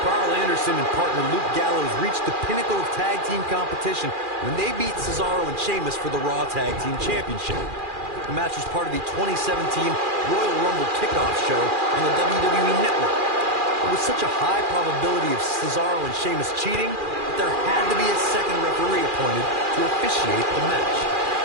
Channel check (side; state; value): left; late; 2.4 ms